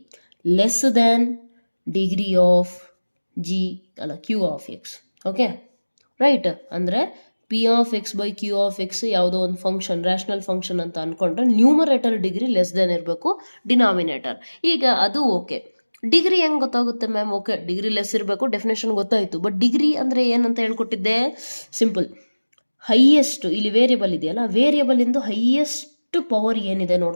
less than degree of Q of X. Okay right. ಅಂದರೆ P of X by Q of X ಯಾವುದೋ ಒಂದು function, rational function ಅಂತ ಅಂದ್ಕೊಂಡ್ರೆ numerator degree less than ಇರಬೇಕು denominator. ಈಗ ಅದು okay. Degree ಹೆಂಗೆ ಗೊತ್ತಾಗುತ್ತೆ ಮ್ಯಾಮ್? ಓಕೆ, ಡಿಗ್ರಿ ಲೆಸ್ ಇರಬೇಕು, ಡೆಫಿನೇಷನ್ ಗೊತ್ತಾಯಿತು. ಬಟ್ ಡಿಗ್ರಿ ಅಂದರೆ ಏನಂತ ಹೇಳ್ಕೊಟ್ಟಿದ್ದೆ? ಸಿಂಪಲ್, ಹೈಯೆಸ್ಟ್, ಇಲ್ಲಿ ವೇರಿಯಬಲ್ ಇದೆಯಲ್ಲ, ವೇರಿಯಬಲಿಂದು ಹೈಯೆಸ್ಟ್ ಪವರ್ ಏನಿದೆ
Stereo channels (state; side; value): inverted; both; correlation -1.00